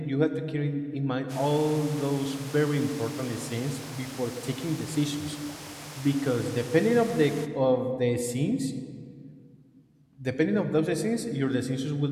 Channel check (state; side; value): identical; both; correlation 1.00